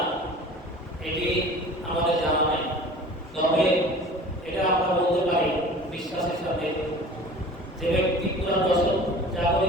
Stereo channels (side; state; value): both; normal; correlation 0.42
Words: এটি আমাদের জানা নাই, তবে এটা আমরা বলতে পারি বিশ্বাসের সাথে যে ব্যক্তি পুরা দশক